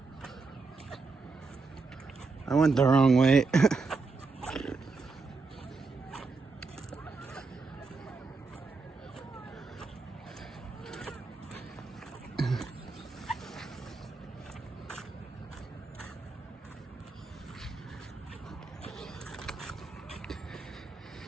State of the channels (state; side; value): quieter; left; 4.2 dB